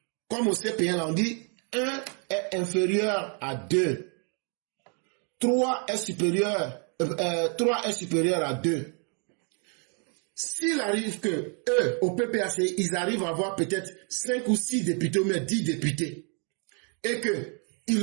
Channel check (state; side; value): quieter; left; 38.9 dB